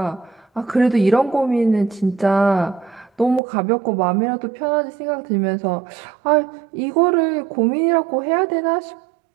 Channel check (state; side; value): drops out; left; at 3.4 s